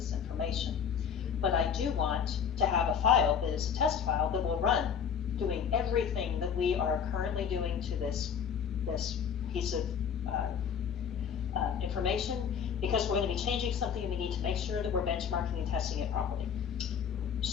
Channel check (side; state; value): right; quieter; 7.5 dB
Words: information. But I do want to have a file that is a test file that will run doing everything that we are currently doing to this piece of information, because we're going to be changing something and we need to make sure that we're benchmarking and testing it properly.